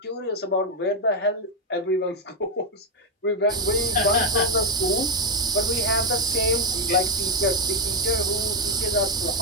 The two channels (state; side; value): normal; both; correlation 0.03